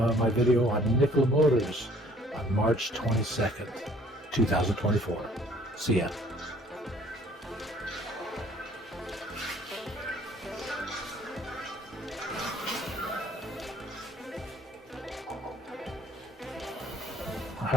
video on Nikola Motors on March 22nd, 2024. See ya.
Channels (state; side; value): normal; both; correlation 0.58